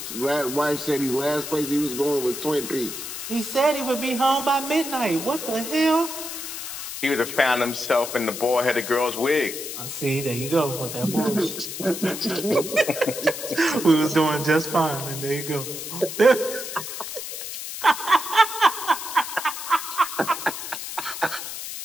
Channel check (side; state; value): left; noise; hiss, 7 dB below the sound